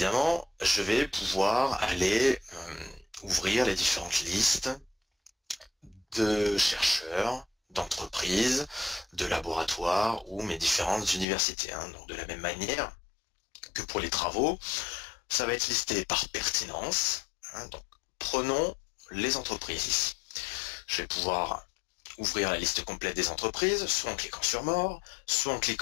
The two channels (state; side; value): drops out; right; at 11.2 s